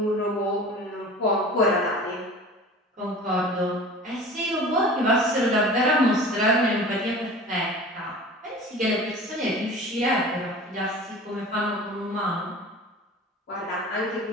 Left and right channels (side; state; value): both; normal; correlation 0.39